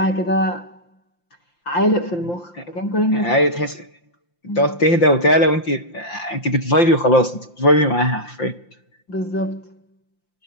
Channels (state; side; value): late; right; 5.8 ms